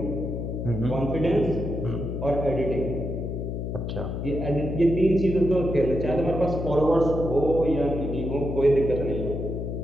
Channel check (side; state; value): left; noise; hum, 4 dB below the sound